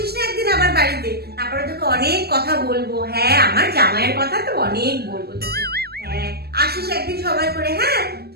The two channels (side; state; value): left; late; 0.46 ms